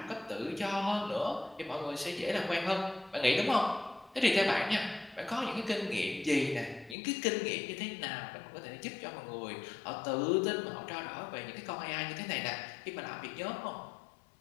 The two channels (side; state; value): right; drops out; at 7.0 s